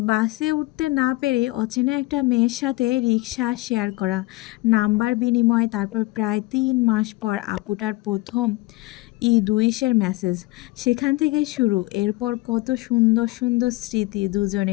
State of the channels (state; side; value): quieter; right; 20.8 dB